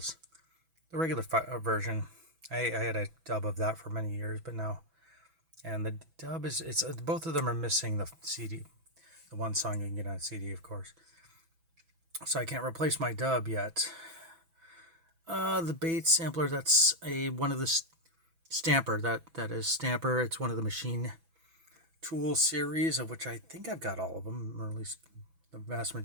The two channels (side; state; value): left; late; 6.1 ms